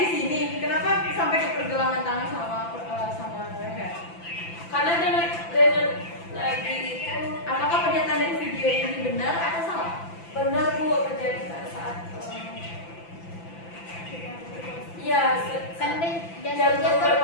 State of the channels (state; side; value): late; right; 5.9 ms